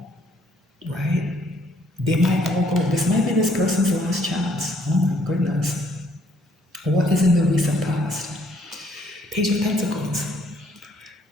right? They might all go. This might be this person's last chance. Oh my goodness. What is in the recent past? Page of Pentacles.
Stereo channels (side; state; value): both; normal; correlation 0.66